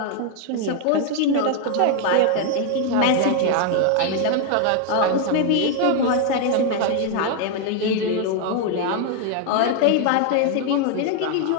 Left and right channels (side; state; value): both; different; correlation 0.00